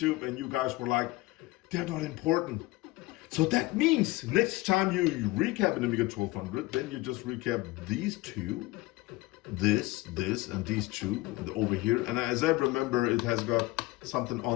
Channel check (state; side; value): quieter; right; 20.5 dB